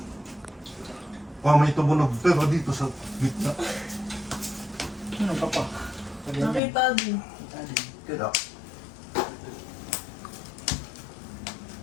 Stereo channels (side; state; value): right; drops out; at 6.6 s